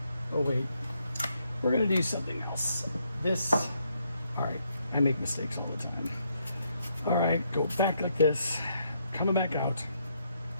Oh wait, we're gonna do something else. This, all right, I make mistakes all the time. All right, go back like this, coming back out.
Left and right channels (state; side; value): inverted; both; correlation -0.75